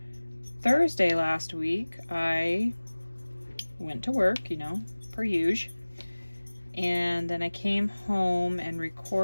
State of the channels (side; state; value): both; inverted; correlation -1.00